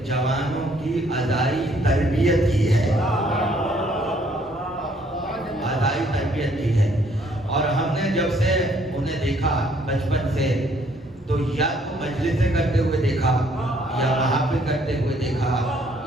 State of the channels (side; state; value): both; normal; correlation 0.65